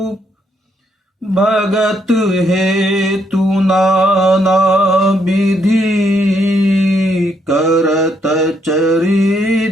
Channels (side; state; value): both; normal; correlation 0.74